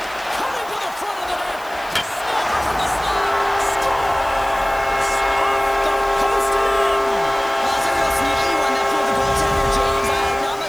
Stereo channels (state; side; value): noise; right; hiss, 20 dB below the sound